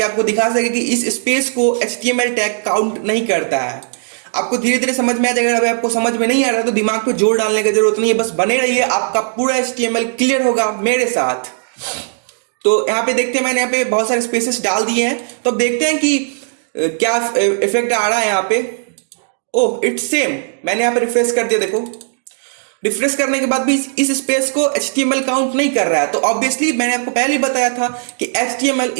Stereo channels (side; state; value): left; silent; digital silence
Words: आपको दिखा सके कि इस स्पेस को HTML टैग काउंट नहीं करता है। आपको धीरे धीरे समझ में आ जाएगा। अगर आपको समझ में नहीं आ रहा तो दिमाग पे जोर डालने की जरूरत नहीं है, बस बने रहिए, आपका पूरा HTML क्लियर होगा मेरे साथ। तो यहाँ पे देखते हैं, मैंने यहाँ पे बहुत सारे स्पेसेस डाल दिए हैं। तो अब देखते हैं कि क्या इफेक्ट आ रहा है यहाँ पे। ओह, इट्स सेम। मैंने यहाँ पे रिफ्रेश कर दिया, देखो रिफ्रेश करने के बाद भी इस स्पेस को HTML काउंट नहीं कर रहा है। तो ऑब्वियसली मैंने आपको पहले ही बताया था कि HTML